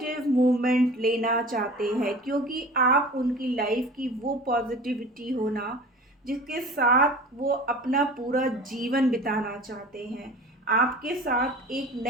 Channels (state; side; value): normal; both; correlation 0.40